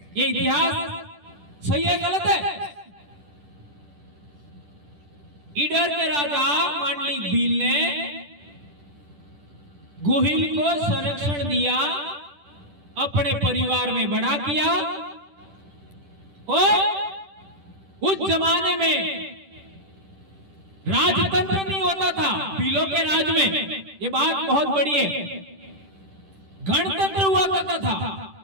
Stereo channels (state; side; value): late; left; 10 ms